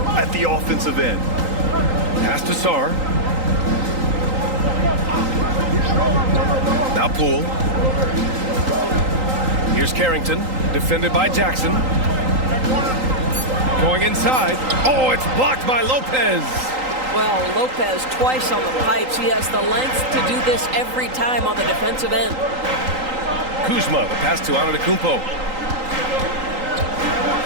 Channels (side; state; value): left; late; 3.8 ms